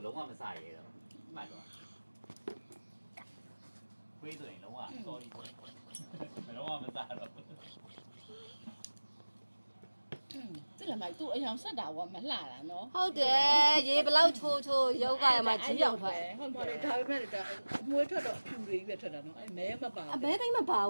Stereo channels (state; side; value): inverted; both; correlation -1.00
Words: လုံးဝမစားရဲတော့မှတ်တော့ခွေးဆိုရင်လုံးဝ sorry လုံးဝမစားတော့တိလာမိုက်သူ့အယောင်ဆက်တာကမလှတာနော်ဟုတ်တယ်ရေဘလောက်ချိုးချိုးရုပ်ကရမှာကြီးအောင်ထွက်ဟုတ်ပါလေဒါပေမဲ့ဒါမွေးထွက်တော့ဖြူလေးပဲထွက်တာနော်အဲမဲမပါအမဲတိုင်းမပါဘ